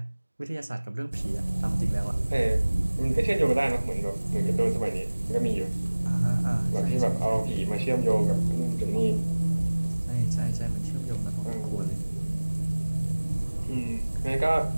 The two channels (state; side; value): inverted; both; correlation -1.00